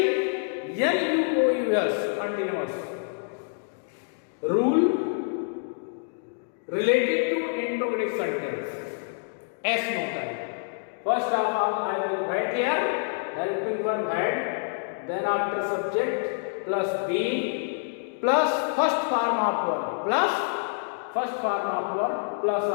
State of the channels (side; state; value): right; silent; digital silence